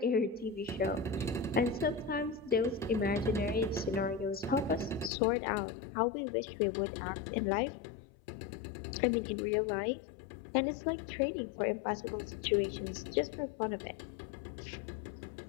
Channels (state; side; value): drops out; right; at 5.1 s